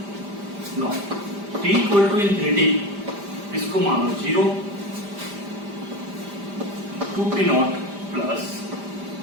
No t equal to infinity इसको मानो 0, 2p naught plus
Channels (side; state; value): left; late; 5.0 ms